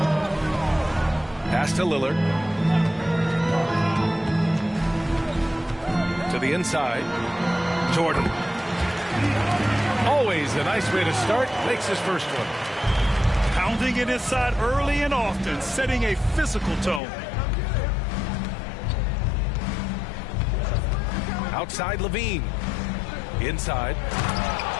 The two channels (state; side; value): drops out; right; at 17.0 s